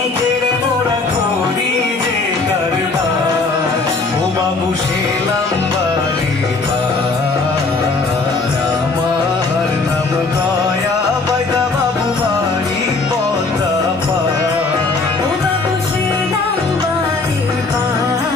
কেড়ে মোরা করি যে কারবার ও বাবু শেলাম বারে আমার নাম গয়া বাইদা বাবু বাড়ি পদা পা ও বাবু শেলাম বারে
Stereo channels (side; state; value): right; quieter; 3.8 dB